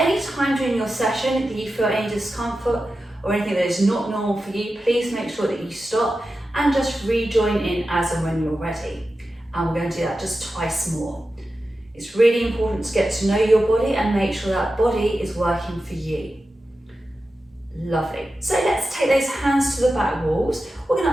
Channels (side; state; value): both; normal; correlation 0.92